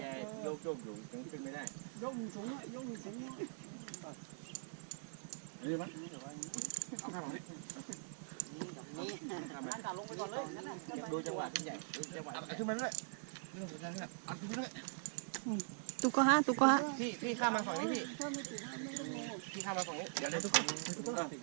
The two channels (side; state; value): left; silent; digital silence